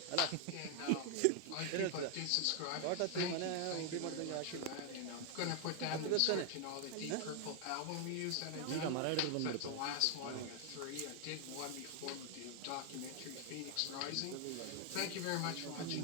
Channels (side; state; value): both; different; correlation 0.00